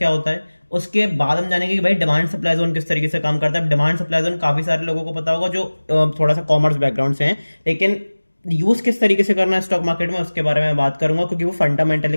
होता है। उसके बाद हम जानेंगे कि भाई डिमांड सप्लाई जोन किस तरीके से काम करता है। डिमांड सप्लाई जोन काफी सारे लोगों को पता होगा जो थोड़ा सा कॉमर्स बैकग्राउंड से हैं, लेकिन यूज किस तरीके से करना है स्टॉक मार्केट में उसके बारे में बात करूंगा, क्योंकि वो फंडामेंटल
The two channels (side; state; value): both; inverted; correlation -1.00